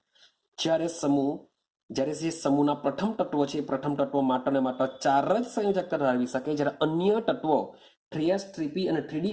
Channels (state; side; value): identical; both; correlation 1.00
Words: જ્યારે જે સમૂહના પ્રથમ તત્વો છે એ પ્રથમ તત્વો માત્ર ને માત્ર 4 જ સંયોજકતા ધરાવી શકે, જ્યારે અન્ય તત્વો 3s 3p અને 3d